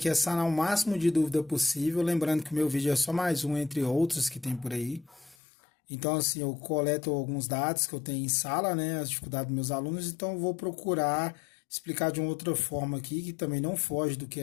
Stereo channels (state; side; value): drops out; right; at 5.4 s